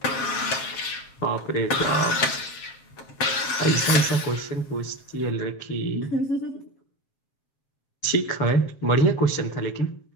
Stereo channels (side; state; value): right; late; 7.5 ms